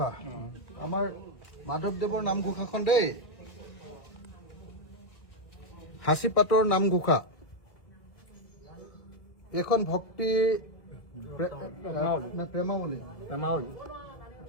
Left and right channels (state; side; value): late; right; 1.6 ms